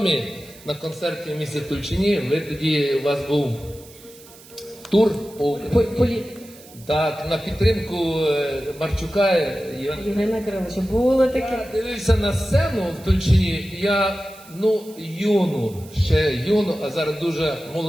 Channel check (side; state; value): right; noise; hiss, 22 dB below the sound